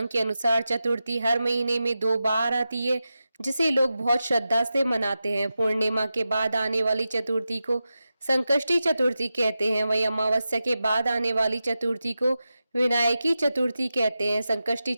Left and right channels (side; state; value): both; inverted; correlation -0.92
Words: के अनुसार चतुर्थी हर महीने में 2 बार आती है, जिसे लोग बहुत श्रद्धा से मनाते हैं। पूर्णिमा के बाद आने वाली चतुर्थी को संकष्टी चतुर्थी कहते हैं। वही अमावस्या के बाद आने वाली चतुर्थी को विनायकी चतुर्थी कहते हैं। संकष्टी